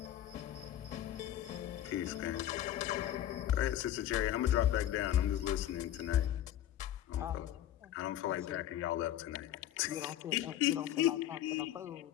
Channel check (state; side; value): quieter; right; 12.0 dB